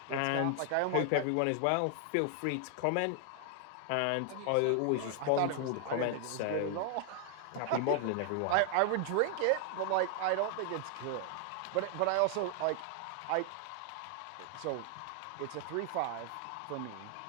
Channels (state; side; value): different; both; correlation 0.00